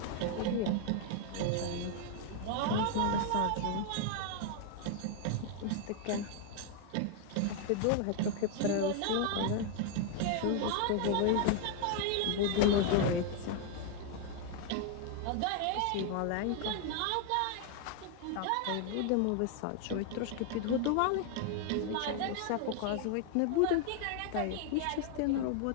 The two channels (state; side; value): different; both; correlation 0.00